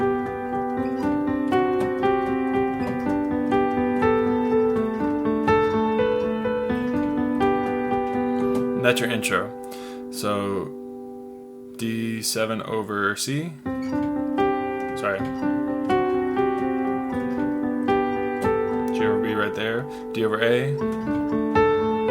And that's your intro. So D7 over C. Sorry. G over B right there, D over A,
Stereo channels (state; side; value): identical; both; correlation 1.00